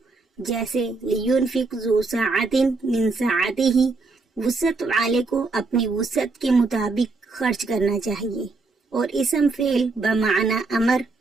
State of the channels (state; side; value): quieter; left; 3.8 dB